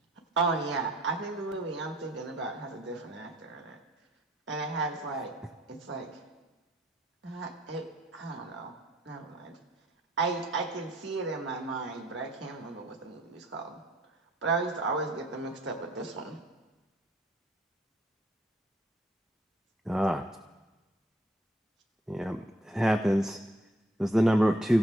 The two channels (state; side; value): normal; both; correlation 0.61